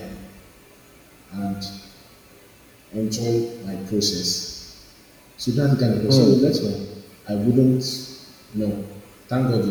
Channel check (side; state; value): both; identical; correlation 1.00